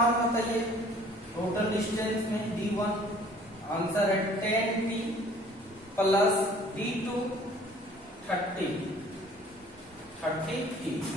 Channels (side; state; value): both; normal; correlation 0.53